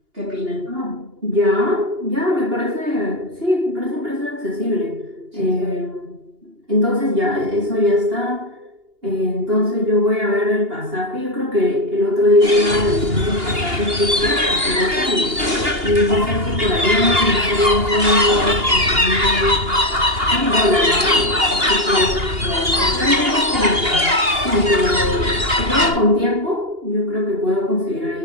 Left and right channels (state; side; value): late; left; 2.8 ms